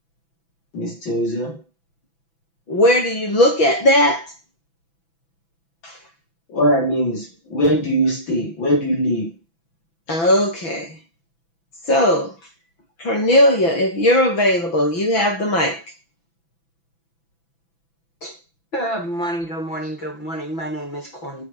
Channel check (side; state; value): right; late; 6.0 ms